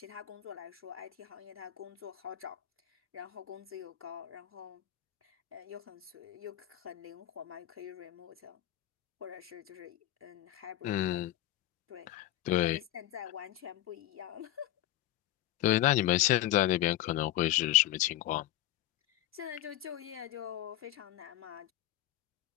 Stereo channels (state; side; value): quieter; right; 14.3 dB